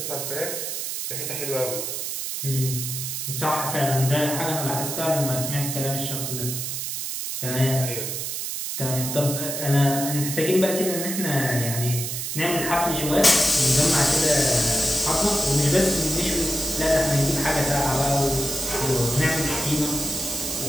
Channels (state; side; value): noise; right; hiss, 4 dB below the sound